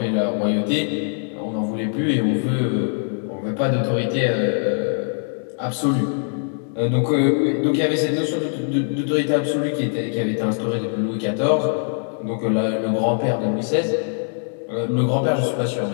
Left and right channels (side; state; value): right; silent; 64 dB below the other